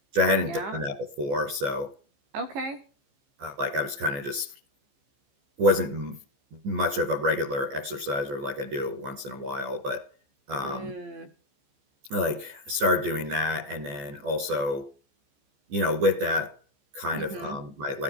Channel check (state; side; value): late; left; 15 ms